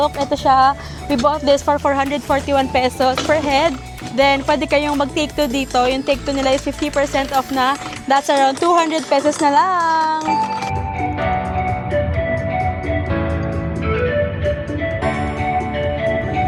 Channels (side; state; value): both; identical; correlation 1.00